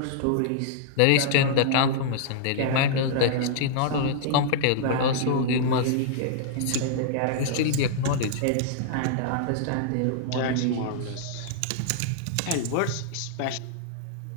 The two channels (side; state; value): both; different; correlation -0.02